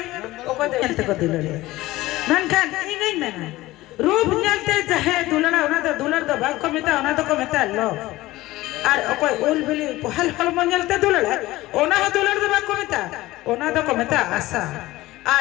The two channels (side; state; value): right; quieter; 17.9 dB